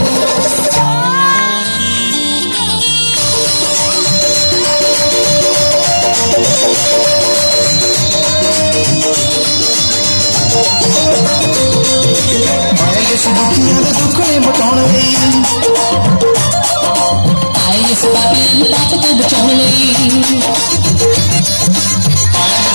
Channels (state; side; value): inverted; both; correlation -1.00